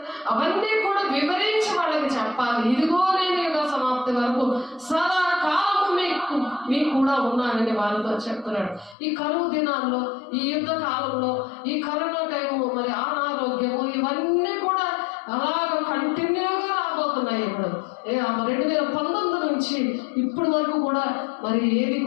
అవన్నీ కూడా వివరించి వాళ్ళకి చెప్పాలి. ఇదిగో నేను యుగ సమాప్తి వరకు సదాకాలము మీకు కూడా ఉన్నానని వాళ్ళతో చెప్తున్నాడు. ఈ కరువు దినాల్లో, ఈ యుద్ధ కాలంలో, ఈ కరోనా టైము, మరి అనారోగ్యము, ఇవన్నీ కూడా అలాగ కంటిన్యూగా రాబోతున్నాయి. ఇప్పుడు 2019 నుంచి ఇప్పటి వరకు కూడా మరి ఏది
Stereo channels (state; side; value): drops out; right; at 9.0 s